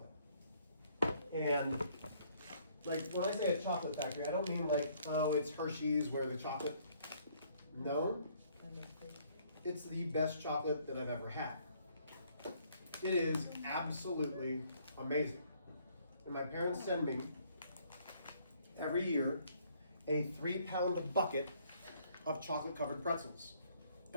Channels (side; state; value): both; inverted; correlation -0.64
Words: And like when I say a chocolate factory, I don't mean like, oh, it's Hershey's where the chocolate. No, it's the best chocolate that I've ever had. It is absolutely amazing. And my parents send me every year a 3-pound bucket of chocolate covered pretzels.